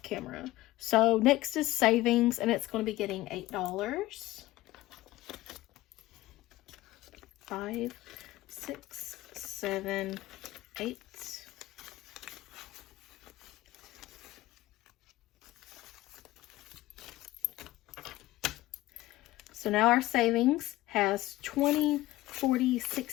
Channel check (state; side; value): quieter; right; 17.2 dB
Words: camera. So next is savings, and it's going to be getting $8. 5, 6, 7, 8. So now our savings has 20, 40,